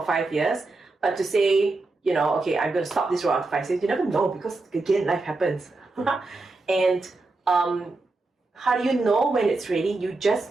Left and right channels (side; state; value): left; quieter; 3.4 dB